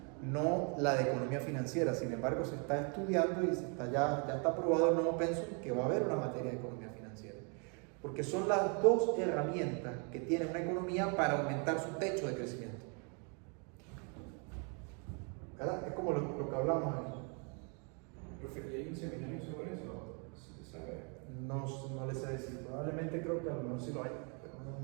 no la de economía financiera. Sin embargo, se está estudiando y ya está aprobado el nuevo pensum que va a haber una materia de economía financiera. Porque son las dos herramientas que tiene una economía para aumentar su techo de crecimiento. ¿Verdad? Es como lo que hablamos aquí. Profe, ¿y hay un seminario sobre eso? ¿Se sabe? No les sé decir, probablemente creo que a lo mejor sí lo hay, pero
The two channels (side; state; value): left; quieter; 36.9 dB